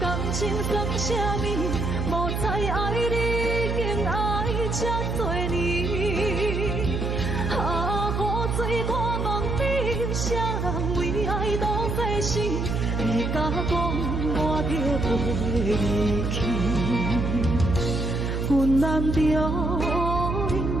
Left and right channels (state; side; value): noise; right; hum, 1 dB below the sound